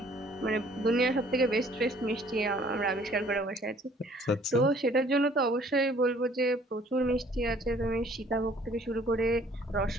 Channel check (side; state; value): both; normal; correlation 0.57